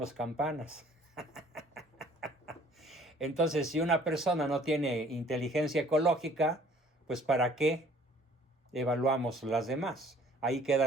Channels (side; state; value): both; normal; correlation 0.55